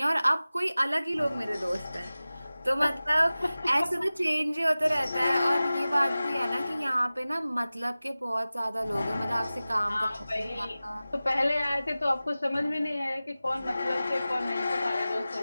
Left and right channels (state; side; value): inverted; both; correlation -0.97